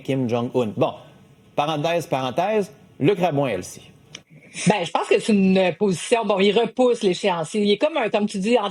Jong-un. Bon, parenthèse, Luc Rabouin, Elsie. Ben, je pense que c'est une position. Bon, il repousse l'échéancier. Il est comme tu dis,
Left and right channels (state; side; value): identical; both; correlation 1.00